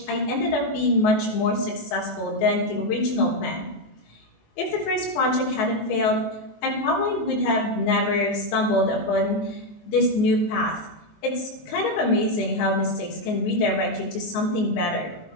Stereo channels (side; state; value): right; late; 19 ms